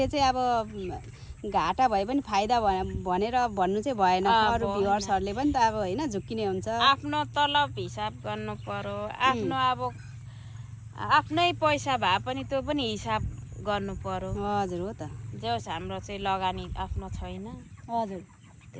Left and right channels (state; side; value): identical; both; correlation 1.00